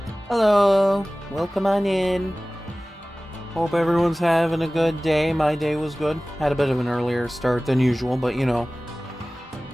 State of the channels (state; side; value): normal; both; correlation 0.98